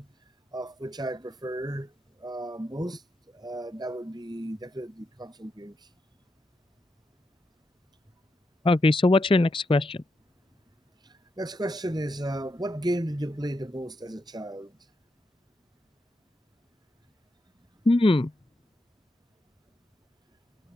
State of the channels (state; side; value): normal; both; correlation 0.84